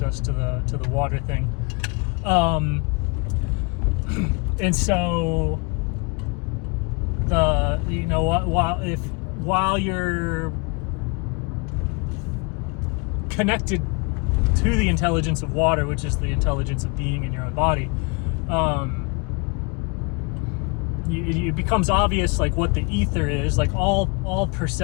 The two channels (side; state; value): right; quieter; 30.4 dB